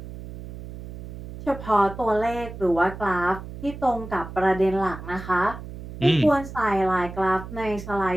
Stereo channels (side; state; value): right; noise; hum, 12 dB below the sound